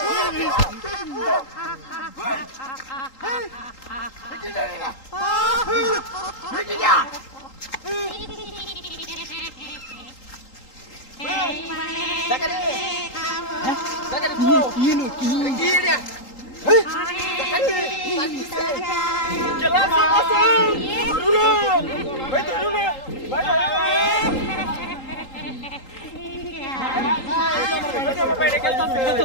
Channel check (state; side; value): late; right; 3.8 ms